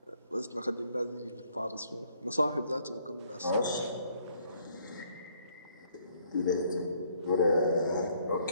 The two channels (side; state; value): both; inverted; correlation -0.66